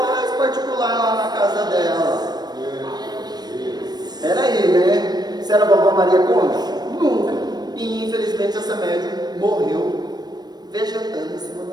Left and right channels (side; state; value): left; late; 0.19 ms